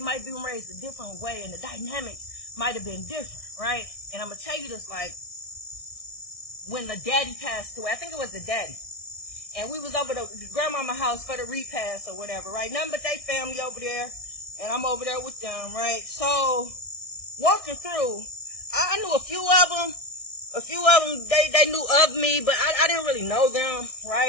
be raised a different way and the dynamics might have been different, right? And I'm going to tell you this, like, when the daddy passed away, I think it was the daddy. And we was over the grandmama house for the repast or whatever, right? Nothing but they family over there. And I'm over there with them, right? So, walking through, I knew a few of them. A few of them, they knew of me, but I didn't really know them,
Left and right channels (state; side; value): late; right; 1.6 ms